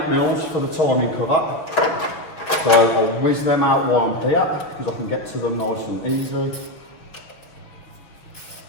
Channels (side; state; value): right; late; 6.0 ms